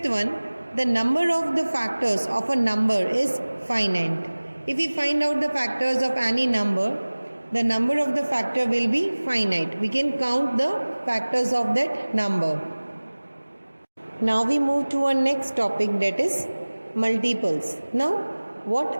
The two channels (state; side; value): inverted; both; correlation -1.00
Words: one, the number of the factors of a number is finite. If we find out the factors of any number, the number of the factor will be finite. We can count the factors of that number. Now we move to our next topic, that is multiples. Now